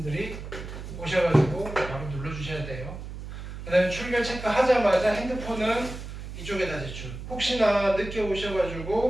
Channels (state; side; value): noise; right; hum, 10 dB below the sound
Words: 오셔가지고 바로 눌러주셔야 돼요. 그 다음에 출결 체크 하자마자 핸드폰은 이쪽에다 제출. 혹시나 늦게